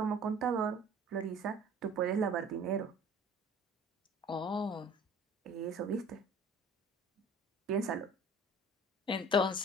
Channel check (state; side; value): normal; both; correlation 0.47